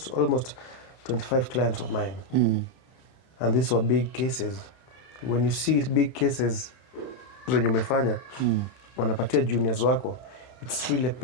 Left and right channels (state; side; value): late; right; 31 ms